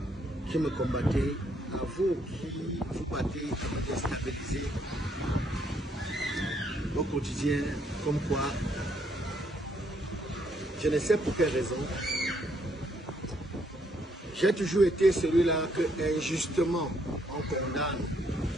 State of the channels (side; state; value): both; normal; correlation 0.71